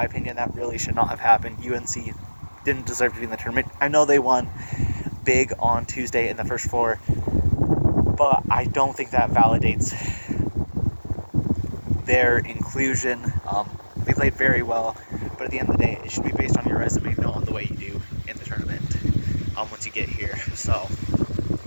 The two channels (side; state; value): both; inverted; correlation -1.00